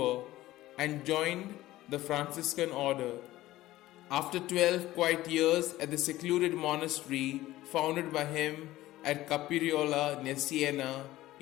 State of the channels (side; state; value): right; quieter; 16.1 dB